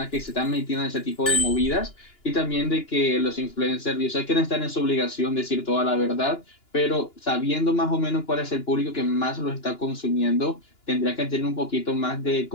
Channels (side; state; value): right; late; 2.9 ms